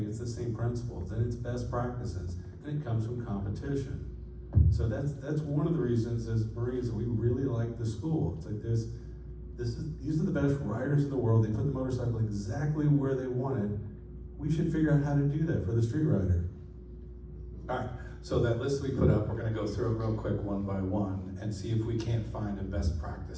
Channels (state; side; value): identical; both; correlation 1.00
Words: it's the same principles, and it's best practices, and it comes from competition. So that's one of the reasons as Marines that we really like the school. It's like these are the best riders in the world. They put the motorcycle exactly where they want it. We should figure out how to do that for the street rider. All right, so that list we put up, we're gonna go through it real quick one by one and see if we can't find a best